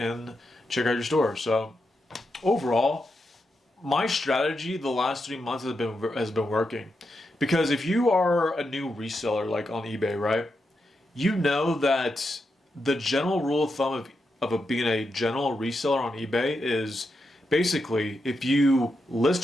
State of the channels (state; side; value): normal; both; correlation 0.85